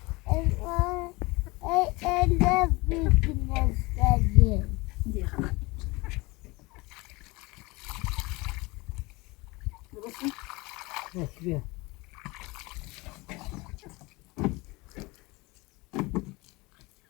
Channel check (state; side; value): quieter; right; 23.8 dB